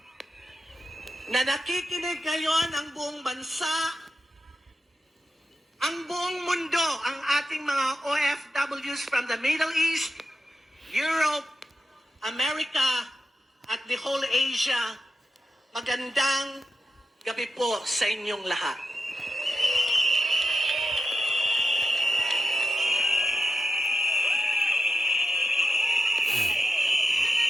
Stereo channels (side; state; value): both; normal; correlation 0.91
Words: na nakikinig ngayon ang buong bansa, ang buong mundo, ang ating mga OFWs from the Middle East, Europe, America, at the whole Asia, magandang gabi po sa inyong lahat.